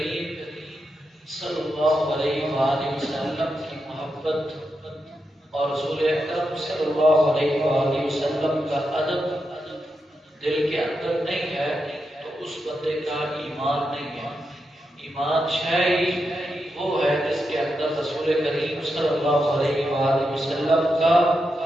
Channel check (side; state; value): both; normal; correlation 0.86